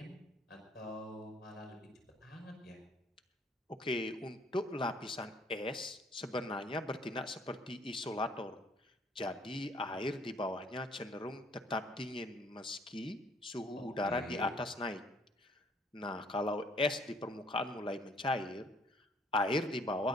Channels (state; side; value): normal; both; correlation 0.60